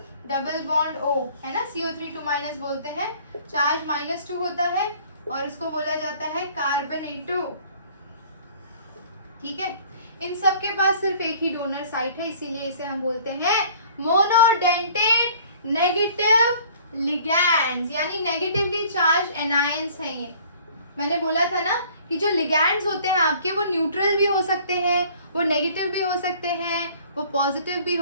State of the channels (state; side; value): inverted; both; correlation -0.53